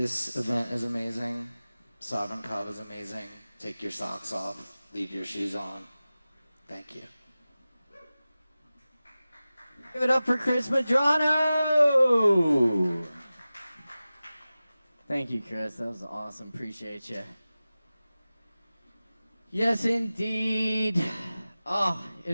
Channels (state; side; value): inverted; both; correlation -0.96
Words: event is amazing. Sovereign Kava is amazing. Take your socks off. Leave your shoes on. Thank you. Give it up for Chris Medrano! Thank you, Chris. That was awesome. Appreciate you. Yes, indeed. Oh,